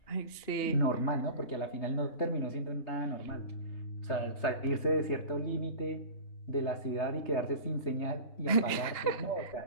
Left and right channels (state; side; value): late; right; 2.9 ms